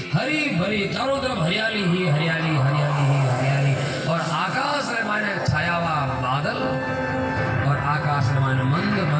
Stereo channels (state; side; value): identical; both; correlation 1.00